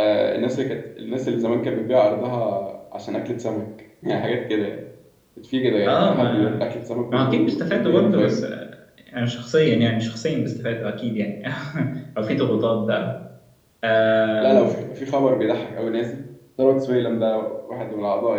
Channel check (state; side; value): identical; both; correlation 1.00